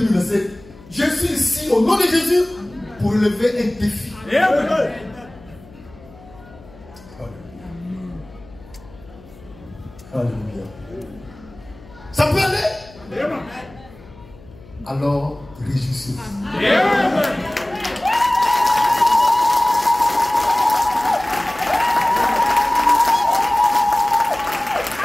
je suis ici au nom de Jésus pour lever un défi. Alléluia. Ça peut aller? Alors, réjouissez-vous.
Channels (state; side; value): noise; left; hum, 22 dB below the sound